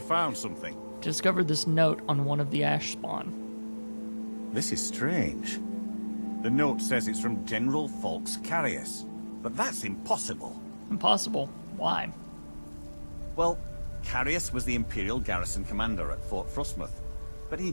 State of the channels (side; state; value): both; inverted; correlation -1.00